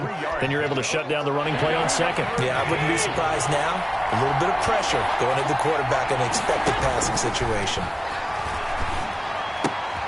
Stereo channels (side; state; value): both; identical; correlation 1.00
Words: then you're able to shut down the running play on 2nd. Yeah, I wouldn't be surprised now. A little bit of pressure going at the quarterback in an expected passing situation.